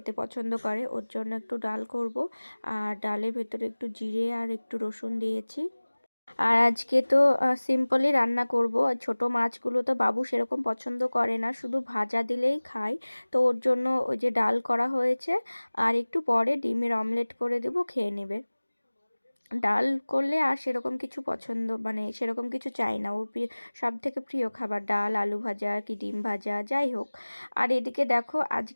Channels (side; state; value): both; inverted; correlation -1.00